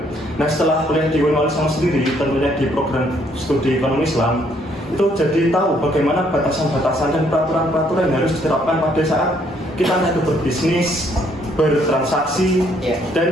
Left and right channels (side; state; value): both; normal; correlation 0.68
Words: Nah setelah kuliah di UIN Wali Songo sendiri, tentunya di program studi ekonomi Islam, itu jadi tahu bagaimana batasan-batasan dan peraturan-peraturan yang harus diterapkan pada saat kita itu berbisnis, bertransaksi,